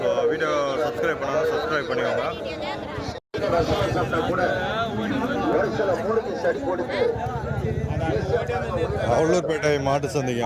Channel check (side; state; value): both; identical; correlation 1.00